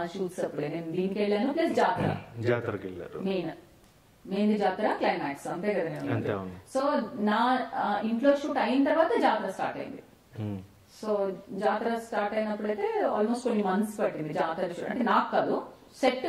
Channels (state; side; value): identical; both; correlation 1.00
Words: షూట్స్ అప్పుడే, నేను దీనికి వెళ్ళాను ప్లస్ జాతరకి వెళ్ళారు. మెయిన్ జాతర క్లైమాక్స్ అంతే కదా నేను. సో నా ఇంట్లో షూట్ అయిన తర్వాత జాతర స్టార్ట్ అయింది. సో జాతర స్టార్ట్ అయినప్పుడైతే ఆల్మోస్ట్ కొన్ని మంత్స్ పట్టింది జాతర షూట్. అంటే నాకు కాదు, సెట్